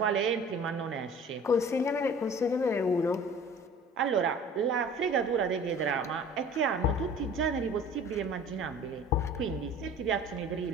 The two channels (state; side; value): normal; both; correlation 0.45